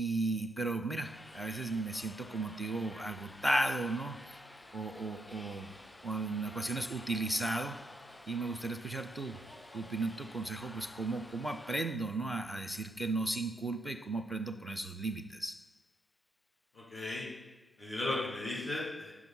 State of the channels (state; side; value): normal; both; correlation 0.78